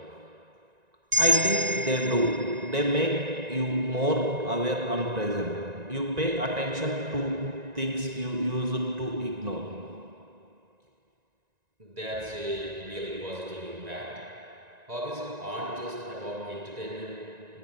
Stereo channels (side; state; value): left; late; 1.9 ms